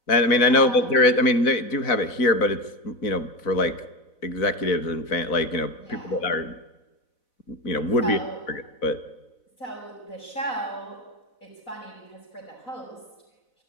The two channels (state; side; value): late; right; 4.0 ms